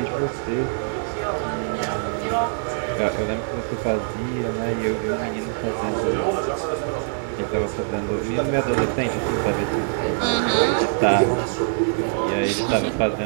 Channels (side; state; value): left; silent; digital silence